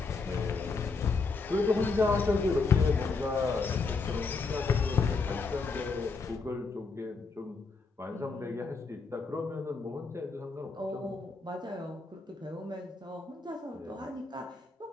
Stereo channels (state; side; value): quieter; right; 4.3 dB